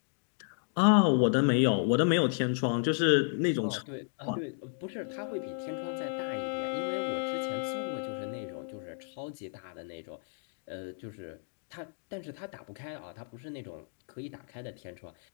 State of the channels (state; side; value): silent; right; digital silence